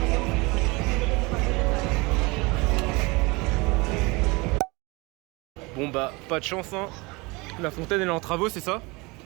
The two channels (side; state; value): left; quieter; 25.5 dB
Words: Bon bah pas de chance hein. La fontaine elle est en travaux, c'est ça?